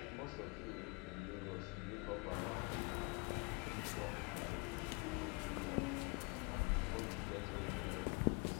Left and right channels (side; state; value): right; quieter; 30.2 dB